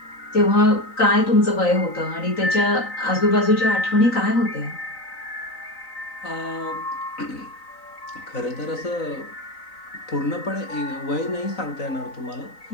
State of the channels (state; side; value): late; right; 3.9 ms